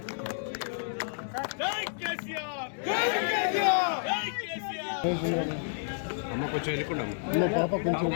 అమ్మ కొంచెం వెళ్ళకుండా పాప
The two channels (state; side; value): silent; right; digital silence